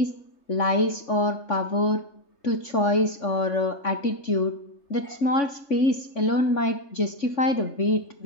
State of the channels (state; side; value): late; right; 3.5 ms